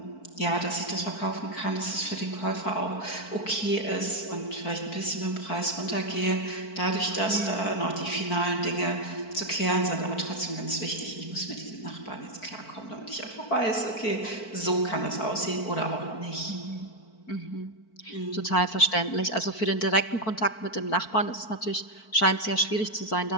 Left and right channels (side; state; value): right; late; 4.5 ms